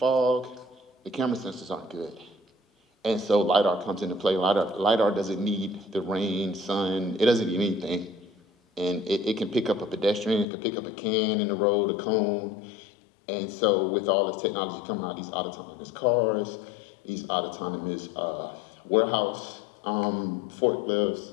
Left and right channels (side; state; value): right; drops out; at 10.5 s